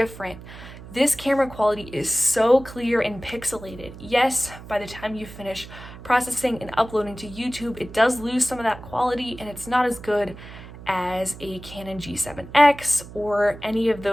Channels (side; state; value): right; noise; hum, 15 dB below the sound